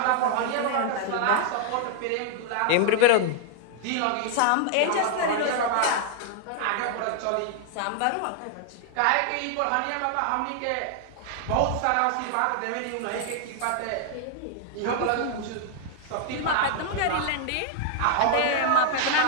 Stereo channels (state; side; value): different; both; correlation -0.01